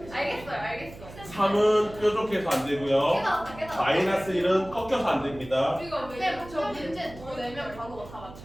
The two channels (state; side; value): noise; right; hum, 16 dB below the sound